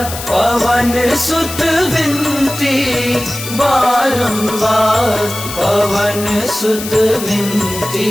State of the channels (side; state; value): left; noise; hiss, 9 dB below the sound